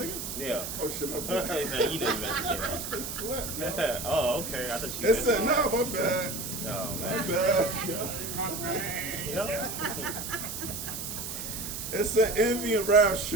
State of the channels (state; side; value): noise; right; hiss, 6 dB below the sound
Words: Yeah. Oh shit, my bad. You know you meant to say Slept, yo. that. Oh, okay. I thought you It meant said, nah, my bad. Oh, My man. bad. Yeah. My bad. Yeah. It said envy and wrath